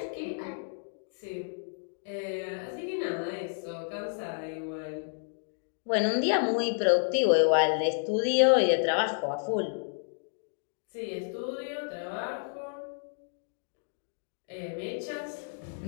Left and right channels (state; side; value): silent; right; digital silence